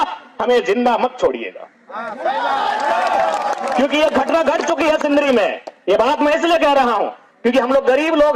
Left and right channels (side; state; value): both; identical; correlation 1.00